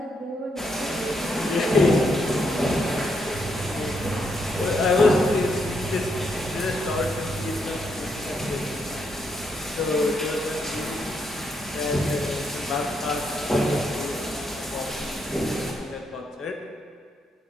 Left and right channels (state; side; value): normal; both; correlation 0.78